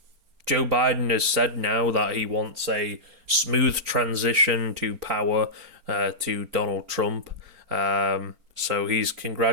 Biden has said now that he wants a smooth transition to power to Donald Trump. So he's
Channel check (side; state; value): left; late; 4.4 ms